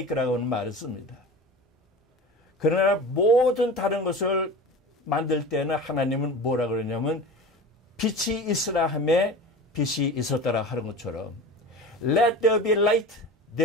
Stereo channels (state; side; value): normal; both; correlation 0.34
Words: 하는 말을 씁니다. 그러나 모든 다른 것을 만들 때는 하나님은 뭐라 그러냐면 빛이 있으라 하매 빛이 있었더라 하는 것처럼 let there be light,